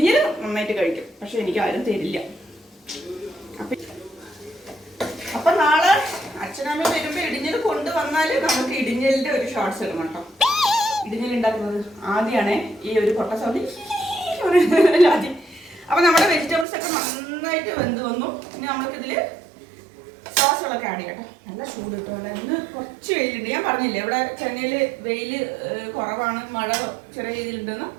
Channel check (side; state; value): left; drops out; at 16.7 s